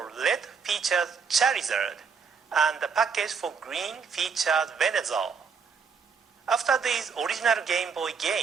Red featured Charizard, and the package for Green featured Venusaur. After these original Game Boy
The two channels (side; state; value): left; quieter; 5.8 dB